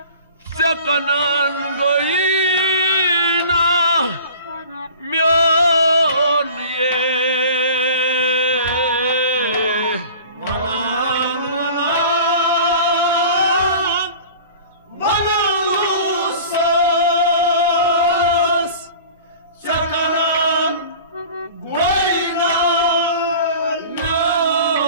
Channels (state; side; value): inverted; both; correlation -0.42